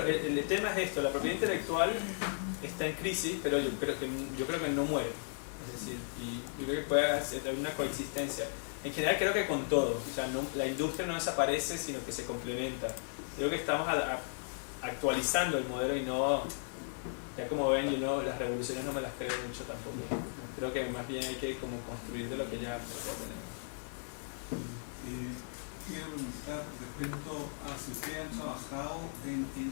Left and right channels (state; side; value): silent; right; digital silence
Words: el tema es esto, la propiedad intelectual está en crisis, pero yo creo que no muere. Es decir, y yo creo que puede haber una coexistencia. En general creo que con todo, o sea, la industria no desaparece, sino que se complementa. Creo que estamos actualizando el modelo y no, ya como ven, las revoluciones no me las creo mucho tampoco. Creo que más bien hay que como construir de lo que ya tenemos. Quiero preguntar respecto a si ustedes han trabajado en